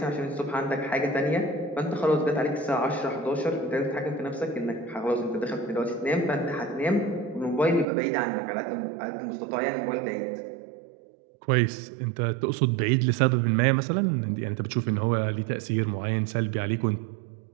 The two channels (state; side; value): drops out; left; at 7.9 s